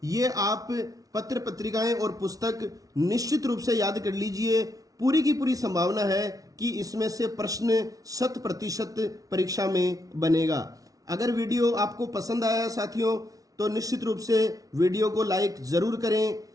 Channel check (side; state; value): left; late; 0.18 ms